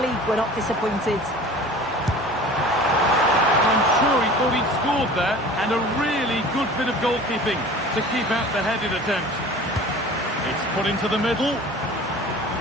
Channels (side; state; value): both; normal; correlation 0.42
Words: we're not disappointed. I'm sure he thought he'd scored there, and a really good bit of goalkeeping to keep out the headed attempt. It's put into the middle.